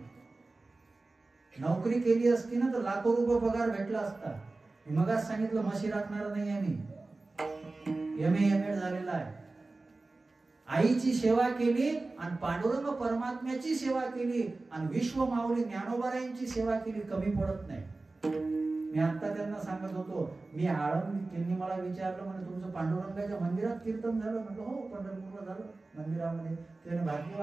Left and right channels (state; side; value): quieter; left; 3.3 dB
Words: नोकरी केली असती ना तर लाखो रुपये पगार भेटला असता. मगाच सांगितलं, म्हशी राखणार नाही आहे मी, MA झालेला आहे. आईची सेवा केली आणि पांडुरंग परमात्म्याची सेवा केली आणि विश्व माऊली ज्ञानोबारायांची सेवा केली, कमी पडत नाही. मी आता त्यांना सांगत होतो, मी आळंदी, त्यांनी मला विचारलं, म्हणजे तुमचं पांडुरंगाच्या मंदिरात कीर्तन झालं? म्हटलं हो, पंढरपूरला झालं मंदिरामध्ये. त्याने